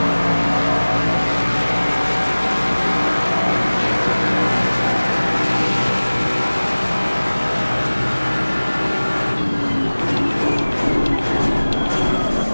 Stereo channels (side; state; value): both; inverted; correlation -1.00